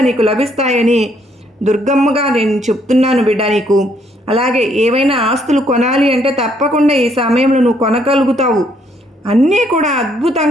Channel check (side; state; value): both; normal; correlation 0.69